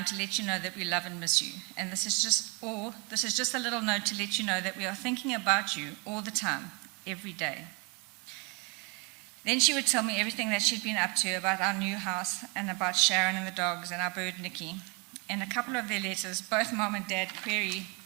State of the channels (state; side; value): quieter; left; 31.1 dB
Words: to let you know that we love and miss you, and this is just a little note to let you know that we are thinking about you all the time, every day. Then she would tell me everything that she'd been up to about our new house and about Sharon and the dogs and our bird Nikki. In a couple of their letters, both Mom and Dad query